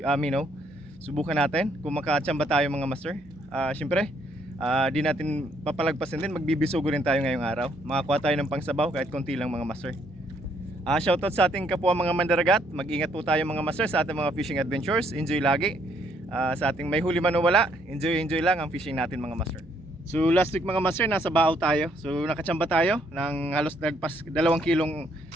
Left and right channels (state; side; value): normal; both; correlation 0.70